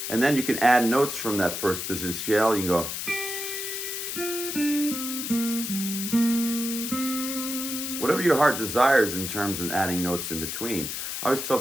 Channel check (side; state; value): left; noise; hiss, 4 dB below the sound